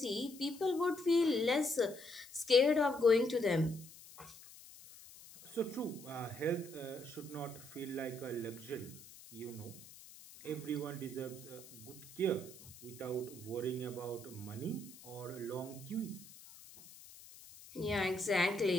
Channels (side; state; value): left; noise; hiss, 18 dB below the sound